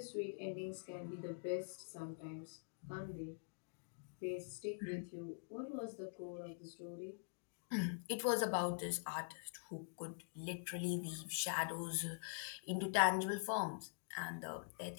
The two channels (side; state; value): right; silent; digital silence